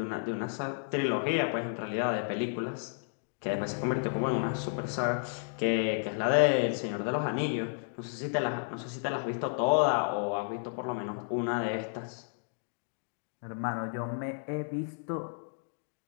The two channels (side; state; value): right; silent; digital silence